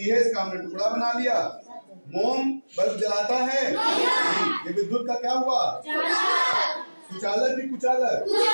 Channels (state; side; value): inverted; both; correlation -1.00